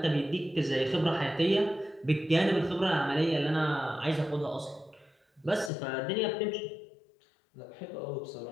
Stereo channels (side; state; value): right; drops out; at 5.7 s